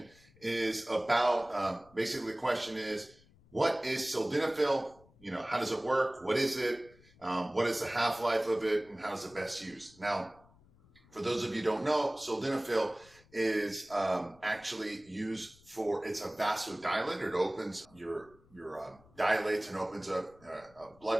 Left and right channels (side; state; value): left; noise; rumble, 27 dB below the sound